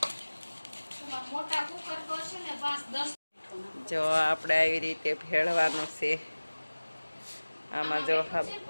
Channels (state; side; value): inverted; both; correlation -1.00